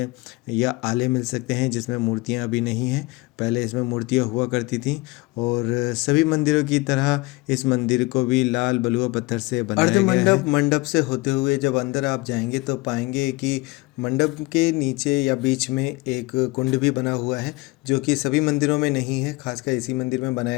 या आले मिल सकते हैं जिसमें मूर्तियाँ अभी नहीं हैं। पहले इसमें मूर्तियाँ हुआ करती थीं, और सभी मंदिरों की तरह इस मंदिर को भी लाल बलुआ पत्थर से बनाया गया है। मंडप से होते हुए जब अंदर आप जाएंगे तो पाएंगे कि मंडप के नीचे या बीच में एक कुंड भी बना हुआ है, जो कि सभी मंदिरों में नहीं है, खासकर इसी मंदिर में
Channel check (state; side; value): quieter; right; 23.3 dB